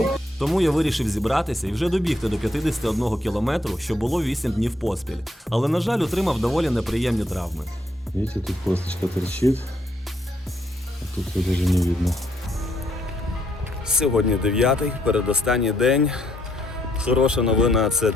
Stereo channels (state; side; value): normal; both; correlation 0.73